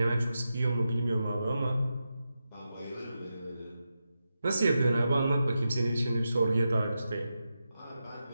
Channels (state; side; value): inverted; both; correlation -0.89